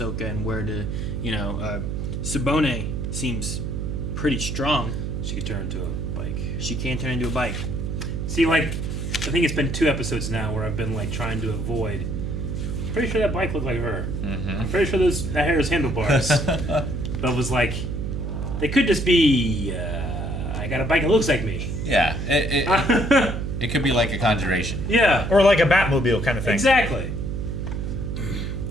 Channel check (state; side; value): noise; right; hum, 3 dB below the sound